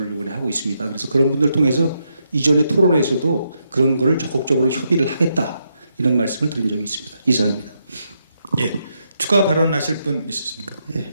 이번에 하고 있습니다. 그래서 그런 분들 통해서 이전의 토론회에서도 그런 거를 적극적으로 협의를 하겠다 이런 말씀을 드린 적이 있습니다. 이상입니다. 예. 추가 발언하실 분 있으십니까?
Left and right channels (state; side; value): inverted; both; correlation -0.80